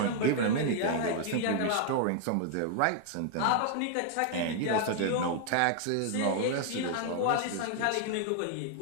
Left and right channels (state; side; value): different; both; correlation 0.00